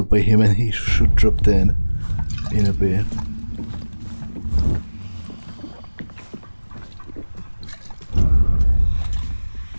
by him, and he should drop dead in a bit.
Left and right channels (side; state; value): both; inverted; correlation -1.00